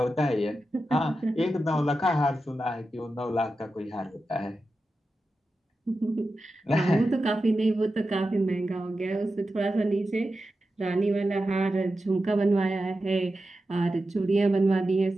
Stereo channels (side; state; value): both; normal; correlation 0.91